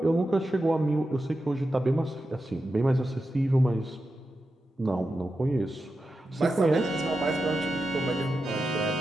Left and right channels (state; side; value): normal; both; correlation 0.90